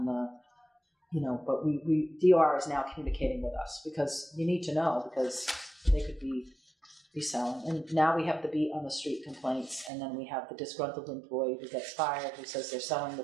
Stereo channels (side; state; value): left; drops out; at 9.9 s